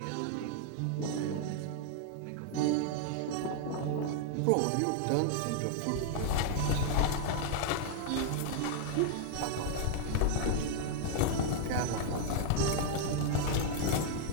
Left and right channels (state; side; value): different; both; correlation 0.00